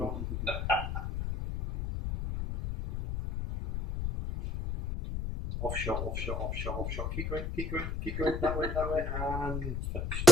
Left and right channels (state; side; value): noise; left; rumble, 2 dB below the sound